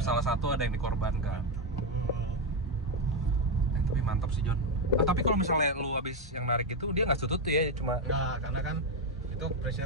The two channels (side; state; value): both; normal; correlation 0.07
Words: salah satu ada yang dikorbankan. Tapi mantap sih, John. Tapi kalau misalnya lu habis yang narik itu dia nggak tutut tuh ya, cuma Nah, karena kan itu